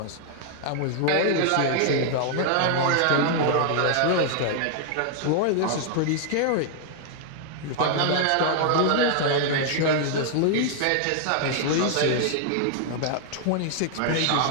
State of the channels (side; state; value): both; different; correlation -0.01